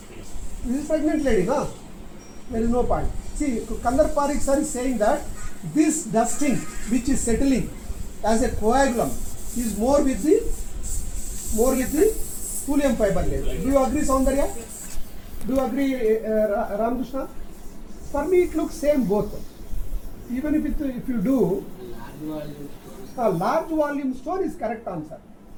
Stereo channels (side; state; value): both; identical; correlation 1.00